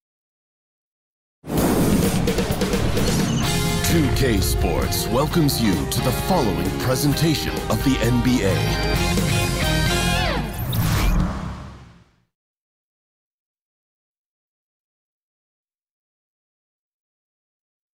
2K Sports welcomes you to the following presentation of the NBA.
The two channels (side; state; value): both; identical; correlation 1.00